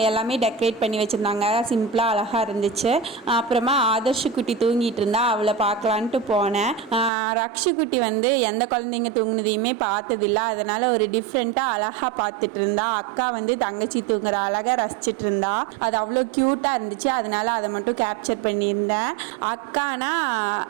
எல்லாமே டெக்கரேட் பண்ணி வச்சுருந்தாங்க. சிம்பிளாக அழகாக இருந்துச்சு. அப்புறமா ஆதர்ஷ் குட்டி தூங்கிட்டு இருந்தா, அவளை பார்க்கலான்ட்டு போனேன். ரக்ஷுக்குட்டி வந்து எந்த குழந்தைங்க தூங்குனதையுமே பார்த்ததில்ல, அதனால் ஒரு டிஃப்ரெண்ட்டாக அழகாக பார்த்துட்டு இருந்தா. அக்கா வந்து தங்கச்சி தூங்குற அழகாக ரசிச்சுட்டு இருந்தா. அது அவ்வளோ க்யூட்டாக இருந்துச்சு, அதனால் அதை மட்டும் கேப்சர் பண்ணியிருந்தேன். அக்கானா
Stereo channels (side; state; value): left; drops out; at 7.1 s